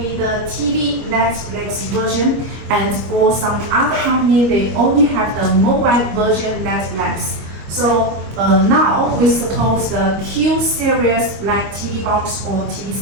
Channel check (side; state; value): left; late; 25 ms